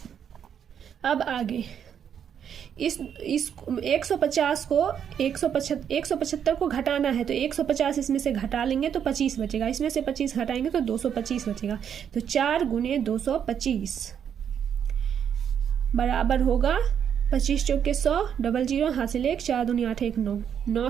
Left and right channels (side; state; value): left; quieter; 8.4 dB